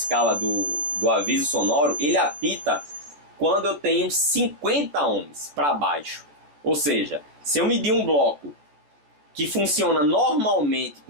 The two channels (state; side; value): late; left; 14 ms